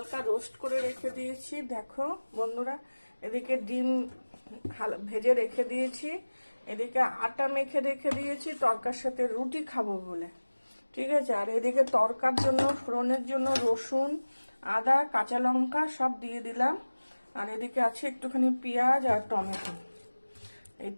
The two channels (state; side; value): inverted; both; correlation -1.00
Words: রোস্ট করে রেখে দিয়েছি। দেখো বন্ধুরা, এদিকে ডিম ভেজে রেখে দিয়েছি, এদিকে আটা মেখে রেখে দিয়েছি তরকার সাথে রুটি খাবো বলে, ঠিক আছে। আর এদিকে তরকার জন্য ফোড়নের জন্য রসুন, আদা, কাঁচা লঙ্কা সব দিয়ে দিলাম। আর এদিকে আছে একটুখানি পেঁয়াজ আর টমেটো।